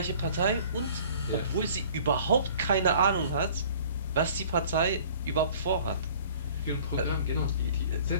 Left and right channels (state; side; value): inverted; both; correlation -0.50